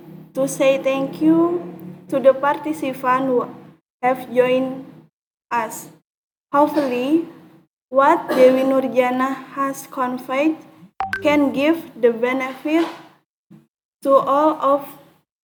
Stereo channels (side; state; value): both; identical; correlation 1.00